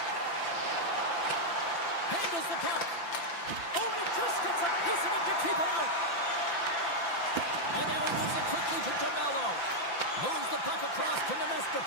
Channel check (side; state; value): right; late; 5.9 ms